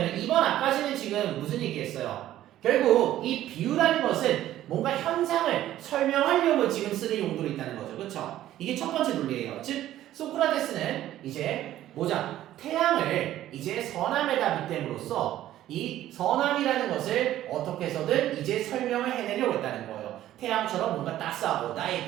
2번 앞까지는 지금 무슨 얘기했어요? 결국 이 비유라는 것은 뭔가 현상을 설명하려고 지금 쓰는 용도로 있다는 거죠. 그렇죠? 이게 첫 번째 논리예요. 즉 소크라테스는 이제 뭐자 태양을 이제 선함에다 빗댐으로써 이 선함이라는 것을 어떻게 해서든 이제 설명을 해내려고 했다는 거예요. 태양처럼 뭔가 따스하고 나의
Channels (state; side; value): quieter; left; 13.2 dB